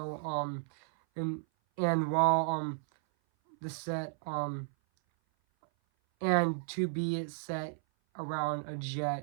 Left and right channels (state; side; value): silent; left; 55 dB below the other